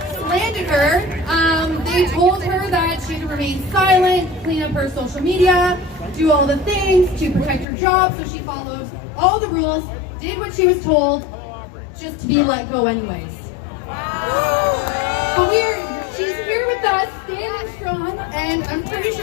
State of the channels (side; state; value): right; drops out; at 7.7 s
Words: slandered her, they told her that she had to remain silent, clean up her social media, do all the things to protect her job, so she followed all the rules, did what she was told, just to be let go anyways. But she's here with us, standing strong, and I'm pretty